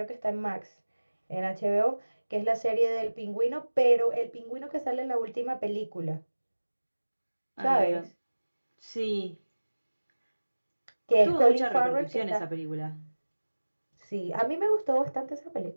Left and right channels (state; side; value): inverted; both; correlation -1.00